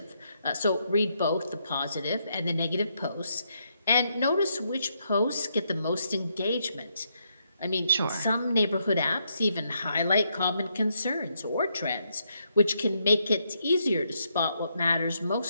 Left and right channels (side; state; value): both; inverted; correlation -0.77